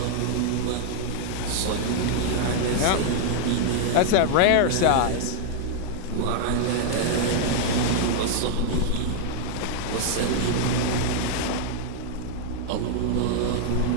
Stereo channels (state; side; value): different; both; correlation 0.00